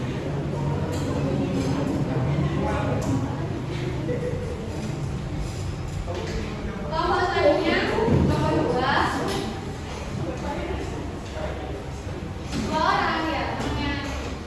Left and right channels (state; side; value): identical; both; correlation 1.00